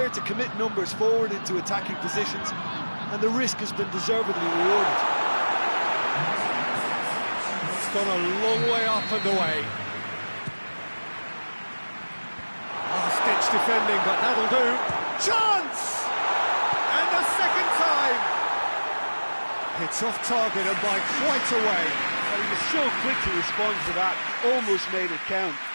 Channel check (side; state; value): both; inverted; correlation -1.00